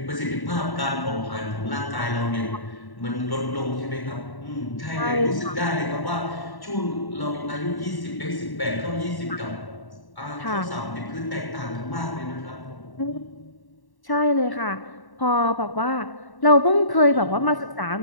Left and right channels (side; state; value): right; late; 1.1 ms